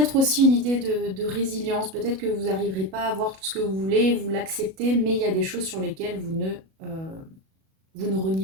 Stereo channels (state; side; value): late; left; 37 ms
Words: aussi une idée de résilience. Peut-être que vous n'arriverez pas à avoir tout ce que vous voulez, vous l'acceptez, mais il y a des choses sur lesquelles vous ne